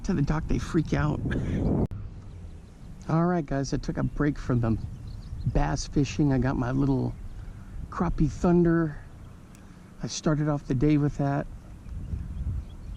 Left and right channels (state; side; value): identical; both; correlation 1.00